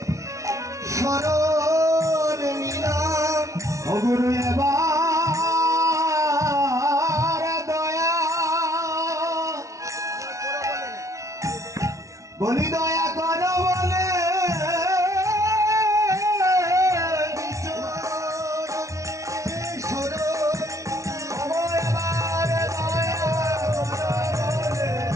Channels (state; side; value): late; left; 0.15 ms